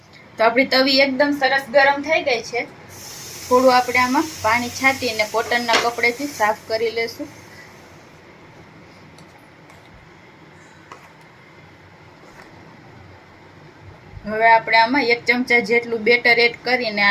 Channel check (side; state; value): both; identical; correlation 1.00